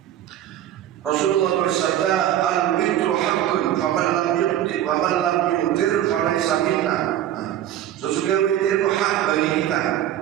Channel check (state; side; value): quieter; left; 11.8 dB